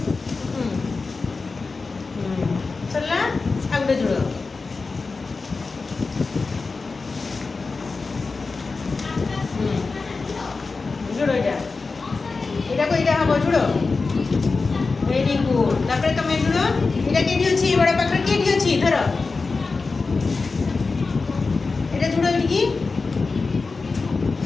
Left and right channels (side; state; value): right; quieter; 4.1 dB